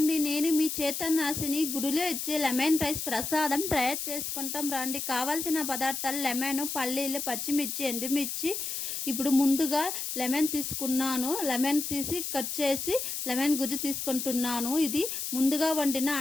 నేను మీ చేతనాశిని గుడిలో ఇచ్చే లెమన్ రైస్ ప్రసాదం తయారు చేసుకుంటాం రండి. కావాల్సిన పదార్థాలు లెమను, పల్లీలు, పచ్చిమిర్చి, ఎండుమిర్చి. ఇప్పుడు ముందుగా లెమన్ తీసుకున్నాను. లెమన్ తీసి కట్ చేసి లెమన్ గుజ్జు తీసుకుంటున్నాను. ఇది ముందుగా వండిన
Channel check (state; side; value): noise; left; hiss, 4 dB below the sound